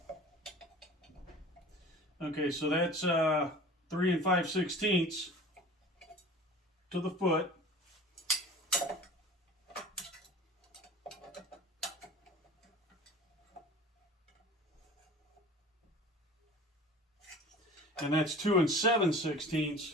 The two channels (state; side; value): normal; both; correlation 0.41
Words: Okay, so that's 3 5/16 to the foot. And that's 2